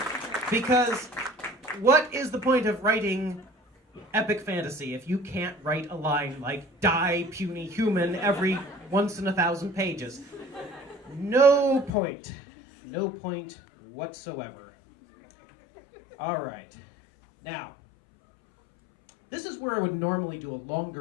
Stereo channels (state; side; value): drops out; right; at 11.9 s